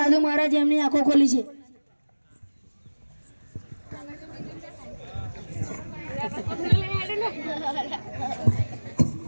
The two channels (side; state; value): both; inverted; correlation -1.00